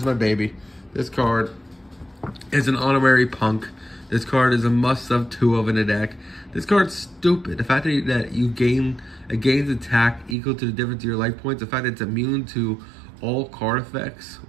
my baby. This card is an honorary Punk. This card is a must-have 2 of in the deck. This card's stupid. The fact that you gains attack equal to the difference of your life points. The fact that it's immune to all card effects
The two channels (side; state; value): left; drops out; at 10.4 s